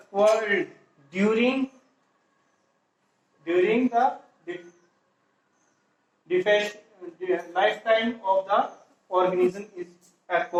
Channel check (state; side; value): identical; both; correlation 1.00